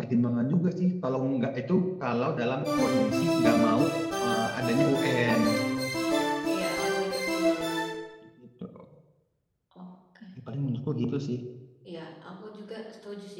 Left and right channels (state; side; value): identical; both; correlation 1.00